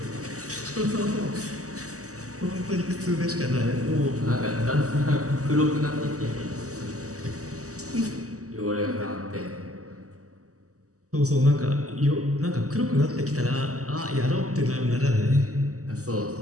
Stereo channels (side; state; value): left; late; 0.66 ms